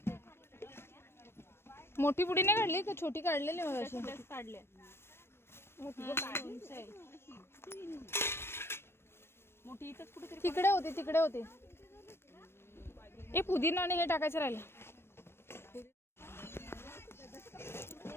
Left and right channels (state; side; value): late; right; 0.12 ms